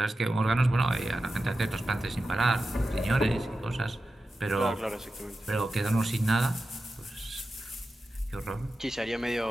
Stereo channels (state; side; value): normal; both; correlation 0.92